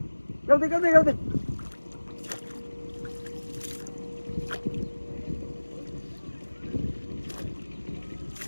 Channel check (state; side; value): inverted; both; correlation -1.00